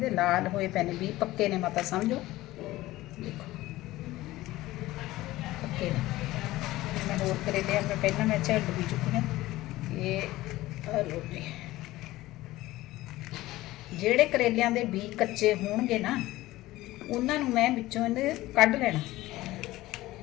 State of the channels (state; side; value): quieter; right; 17.3 dB